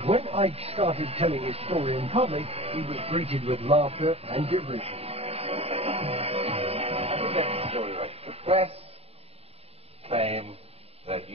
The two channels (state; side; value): late; left; 0.29 ms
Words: when Ike started telling his story in public, he was greeted with laughter and derision. I don't get the story right. The press claim that